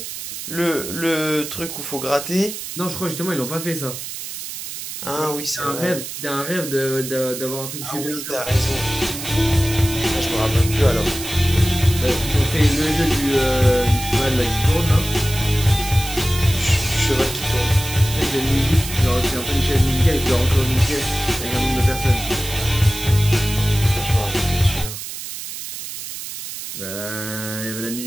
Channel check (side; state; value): right; noise; hiss, 8 dB below the sound